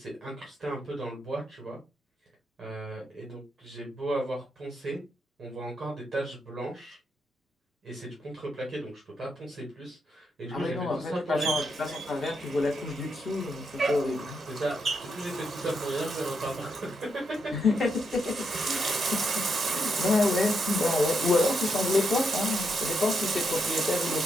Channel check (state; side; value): normal; both; correlation 0.81